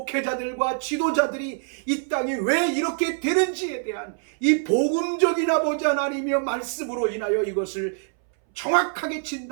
지도자들이 이 땅이 왜 이렇게 되는지에 대한 이 복음적인 아버지 하나님의 말씀으로 인하여 이것을 정확하게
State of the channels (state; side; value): silent; left; 62 dB below the other